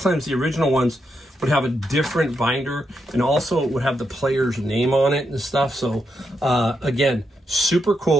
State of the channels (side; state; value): both; normal; correlation 0.82